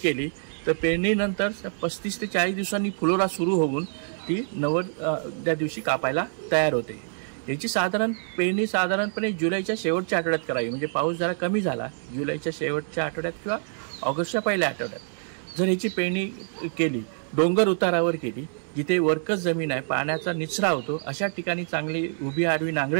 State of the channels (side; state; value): left; silent; 58 dB below the other